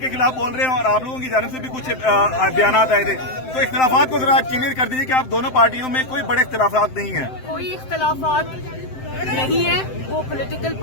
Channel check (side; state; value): right; late; 7.7 ms